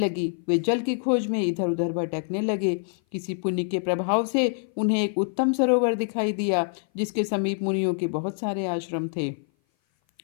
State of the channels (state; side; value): silent; right; 57 dB below the other